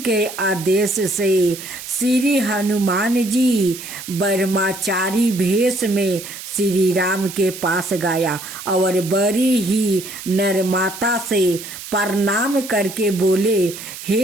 आदेश से श्री हनुमान जी ब्रह्मचारी भेष में श्री राम के पास गया और बड़ी ही नम्रता से प्रणाम करके बोले,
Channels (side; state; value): right; noise; hiss, 12 dB below the sound